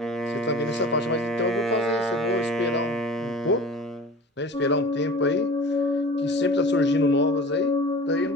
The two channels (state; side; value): normal; both; correlation 0.39